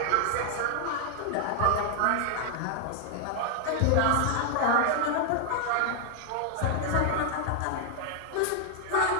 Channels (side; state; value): both; different; correlation 0.00